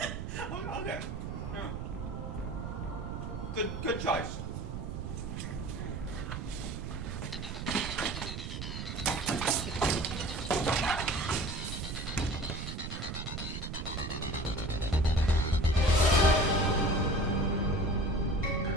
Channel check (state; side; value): noise; right; rumble, 5 dB below the sound